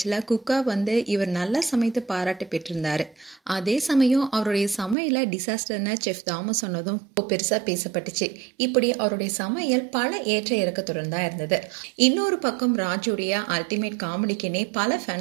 குக்கா இவர் நல்லா சமைத்து பாராட்டு பெற்றிருந்தாரு. அதே சமயம் அவருடைய சமையல டிசாஸ்டர்னு செஃப் தாமஸ் சொன்னதும் பெருசா பேசப்பட்டுச்சு. இப்படி அவருடைய சமையல் பல ஏற்ற இறக்கத்துடன் தான் இருந்தது. இன்னொரு பக்கம் ராஜுடைய அல்டிமேட் காமெடிக்குன்னே பல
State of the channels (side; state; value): left; drops out; at 5.0 s